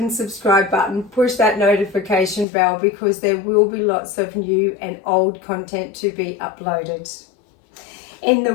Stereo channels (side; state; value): right; drops out; at 2.5 s